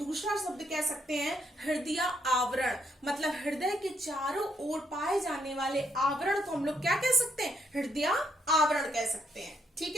शब्द कह सकते हैं हृदय आवरण। मतलब हृदय के चारों ओर पाए जाने वाले आवरण को हम लोग क्या कह सकते हैं? हृदय आवरण कह सकते हैं। ठीक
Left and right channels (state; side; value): normal; both; correlation 0.75